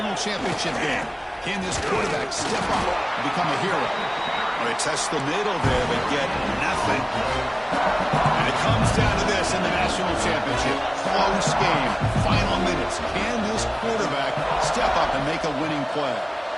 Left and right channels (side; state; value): both; identical; correlation 1.00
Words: championship game. Can this quarterback step up and become a hero? They test the middle there, but get nothing. And it comes down to this in the national championship. Close game. Final minutes. Can this quarterback step up and make a winning play?